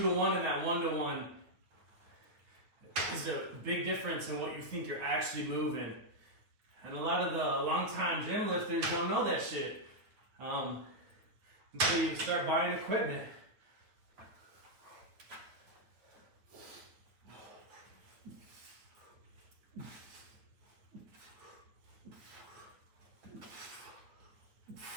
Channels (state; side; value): late; left; 9.2 ms